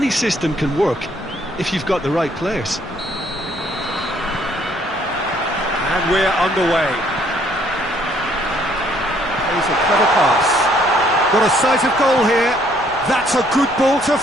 system can work if you've got the right players. And we're underway. Here's a clever pass. Got a sight of goal here. That's a good ball to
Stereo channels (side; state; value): left; noise; rumble, 21 dB below the sound